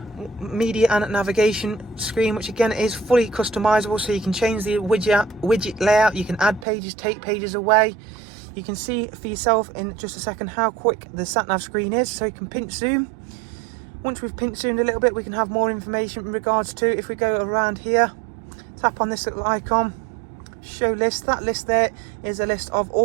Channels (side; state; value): left; drops out; at 6.7 s